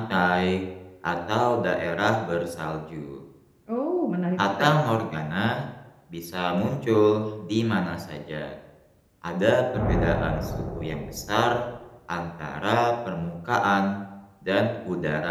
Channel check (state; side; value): identical; both; correlation 1.00